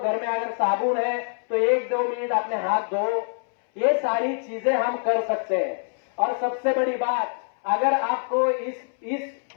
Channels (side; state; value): right; silent; 62 dB below the other